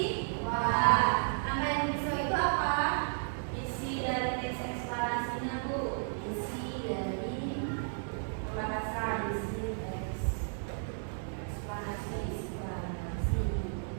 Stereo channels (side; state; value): left; silent; digital silence